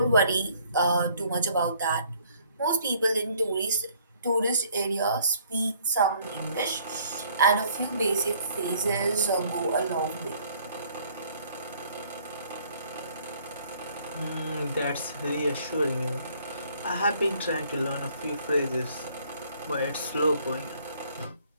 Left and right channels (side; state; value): both; inverted; correlation -0.60